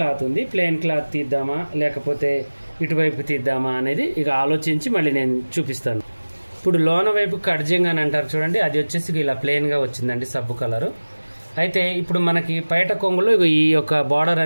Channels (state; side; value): inverted; both; correlation -1.00